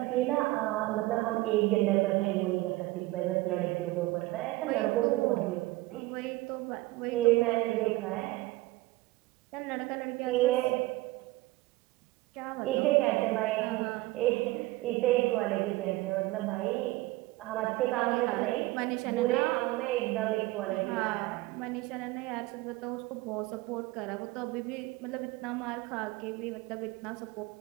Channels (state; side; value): quieter; left; 19.8 dB